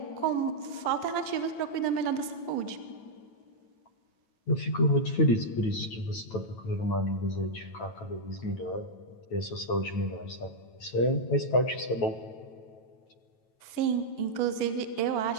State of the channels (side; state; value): right; late; 9.2 ms